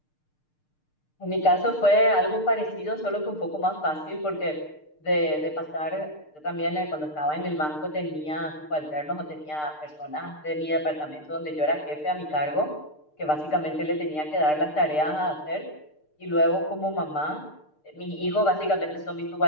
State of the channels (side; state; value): right; late; 6.6 ms